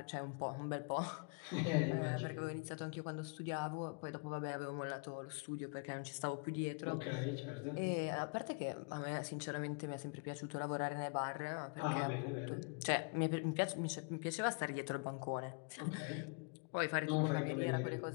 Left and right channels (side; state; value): right; quieter; 35.4 dB